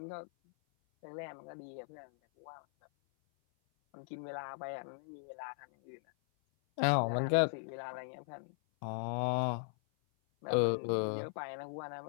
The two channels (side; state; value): right; silent; 52 dB below the other